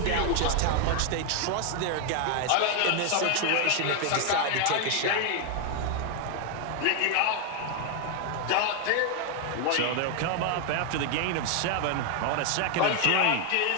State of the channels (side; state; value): both; different; correlation 0.01